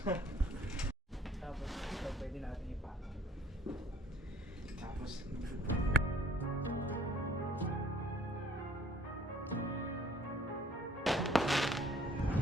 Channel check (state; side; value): normal; both; correlation 0.57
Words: Tapos ito pwede natin ipatong. Tapos